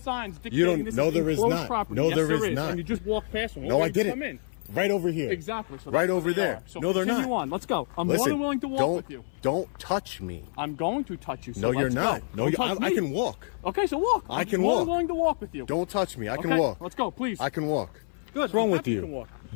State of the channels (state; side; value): silent; right; 57 dB below the other